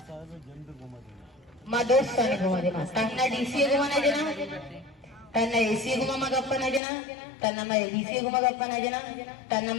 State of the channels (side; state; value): right; drops out; at 6.8 s